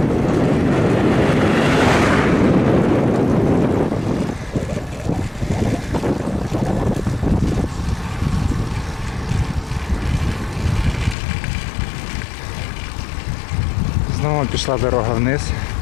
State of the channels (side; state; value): right; drops out; at 11.2 s